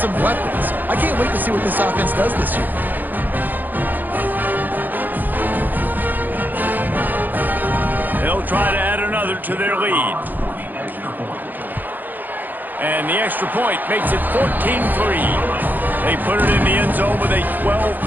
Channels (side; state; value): left; late; 0.086 ms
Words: weapons. I can't wait to see what this offense does this year. Try to add another to their lead. And the extra point makes it 14-3. They put it in the end zone with a